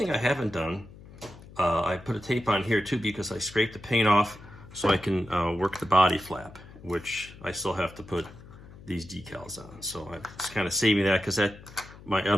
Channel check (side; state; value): left; noise; hum, 19 dB below the sound